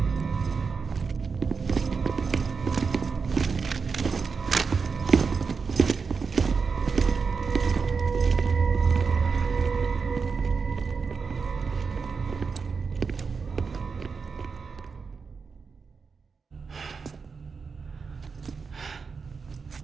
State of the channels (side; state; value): left; quieter; 5.2 dB